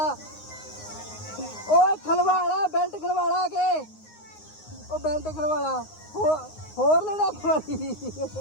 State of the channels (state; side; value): late; right; 9.6 ms